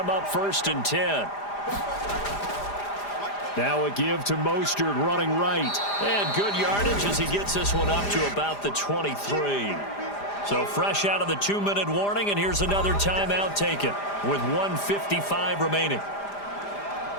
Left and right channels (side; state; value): right; late; 5.0 ms